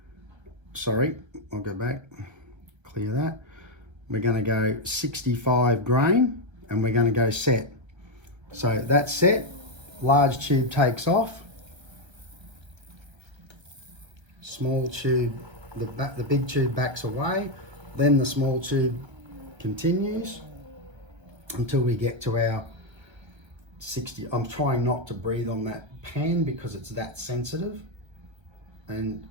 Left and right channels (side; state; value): left; late; 1.3 ms